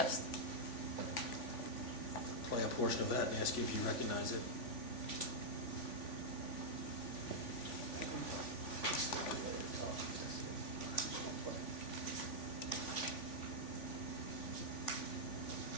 Play a portion of that and ask you if you recognize it.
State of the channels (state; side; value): late; right; 3.5 ms